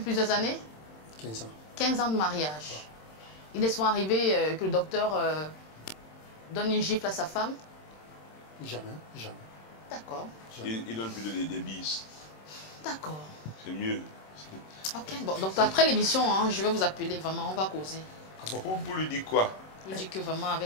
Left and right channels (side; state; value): right; late; 26 ms